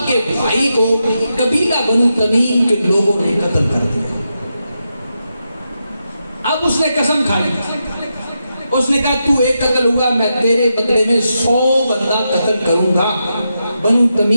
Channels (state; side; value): inverted; both; correlation -0.86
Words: کے بھائی کو قبیلہ بنو تمیم کے لوگوں نے قتل کر دیا۔ اب اس نے قسم کھا لی، اس نے کہا تو ایک قتل ہوا، میں تیرے بدلے میں 100 بندہ قتل کروں گا بنو